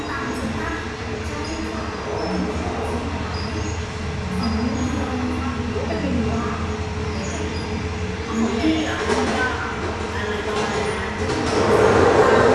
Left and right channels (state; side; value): identical; both; correlation 1.00